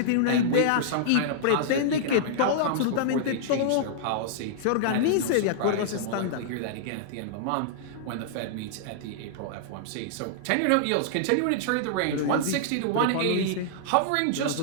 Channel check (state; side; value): different; both; correlation -0.01